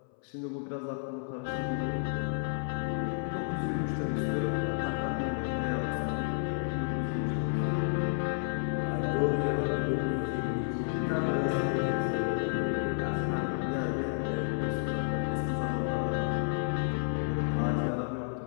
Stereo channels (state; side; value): silent; right; 57 dB below the other